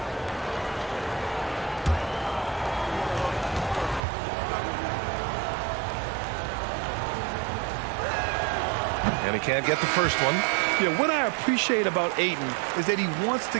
And he can't get the first one. Yeah, what I appreciate about Ayton is that he wants to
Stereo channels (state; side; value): drops out; left; at 4.0 s